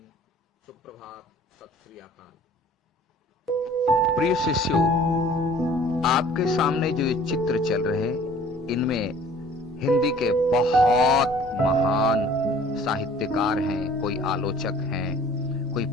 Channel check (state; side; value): normal; both; correlation 0.51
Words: सुप्रभात, सत श्री अकाल। प्रिय शिष्यों, आपके सामने जो ये चित्र चल रहे हैं, इनमें हिंदी के बहुत महान साहित्यकार हैं, कोई आलोचक हैं, कोई